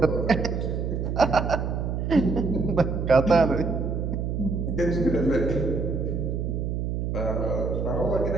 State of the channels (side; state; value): right; noise; hum, 1 dB below the sound